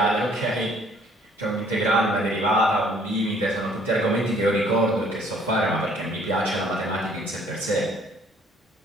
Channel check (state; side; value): normal; both; correlation 0.60